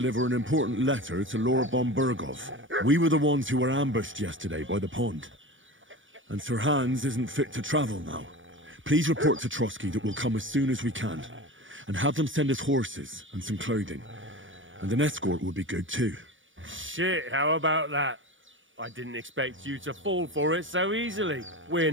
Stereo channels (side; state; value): left; late; 0.56 ms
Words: an important letter to Lord von Bergov. We were the ones who were ambushed yesterday by the pond. And Sir Hans isn't fit to travel now. Please report to Trotsky that we'll come as soon as we can. And have them send us horses and some clothing. And an escort would be good too. Shit, how about that? I didn't expect you to fall for it so easily. We're